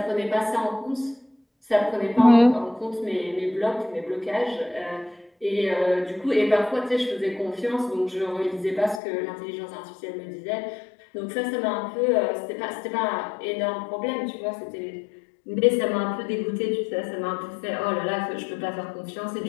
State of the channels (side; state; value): right; drops out; at 9.0 s